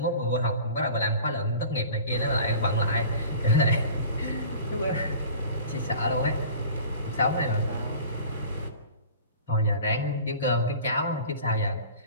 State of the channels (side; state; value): both; inverted; correlation -0.42